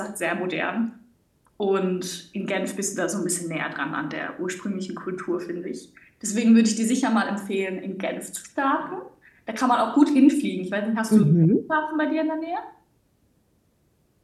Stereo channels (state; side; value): identical; both; correlation 1.00